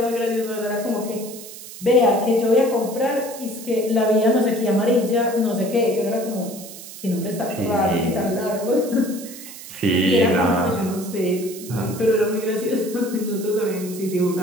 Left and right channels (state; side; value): noise; right; hiss, 14 dB below the sound